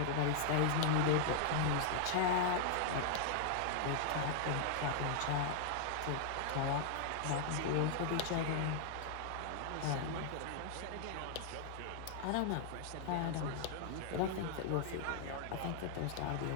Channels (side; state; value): both; different; correlation -0.01